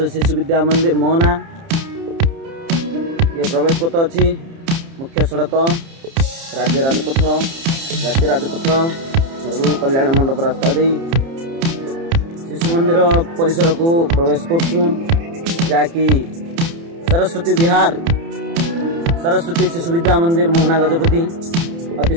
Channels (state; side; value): late; left; 30 ms